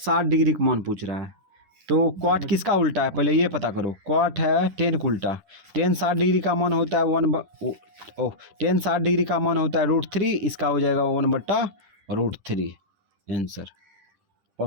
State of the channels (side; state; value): left; late; 10 ms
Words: डिग्री का मान पूछ रहा है। तो कॉट किसका उल्टा है पहले ये पता करो। कॉट है टेन का उल्टा, टेन 60 डिग्री का मान होता है टेन 60 डिग्री का मान होता है √3, इसका हो जाएगा 1/√3 आंसर।